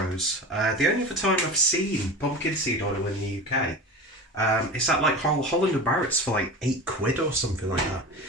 The only other time I've seen pumpkin seed oil in the UK. It's at like Holland and Barrett's for like £8 or something like that,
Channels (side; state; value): both; normal; correlation 0.30